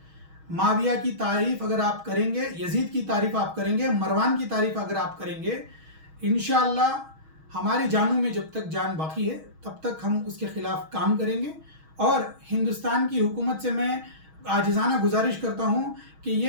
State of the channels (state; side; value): late; left; 6.3 ms